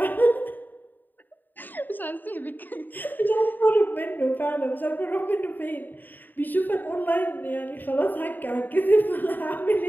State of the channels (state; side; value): late; right; 0.089 ms